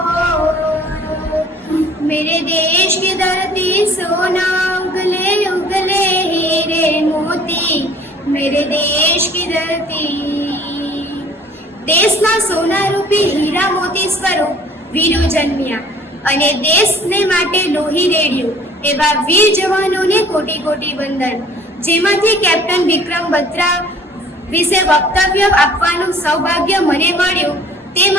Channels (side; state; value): both; normal; correlation 0.52